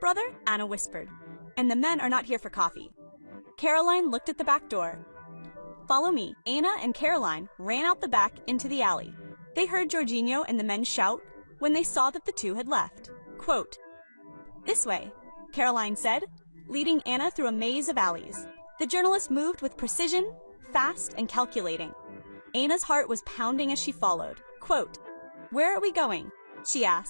Anna whispered. And the men are not here for coffee. Caroline looked at the back door. Follow me. Anna and Caroline ran out the back into the alley. They heard Jorginho and the men shout when they saw that the two had left. Quote, this way, Caroline said, leading Anna through a maze of alleys. The journalist moved with precision, fast and calculating. Anna's heart was pounding as she followed. Quote, where are we going? She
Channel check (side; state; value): both; inverted; correlation -1.00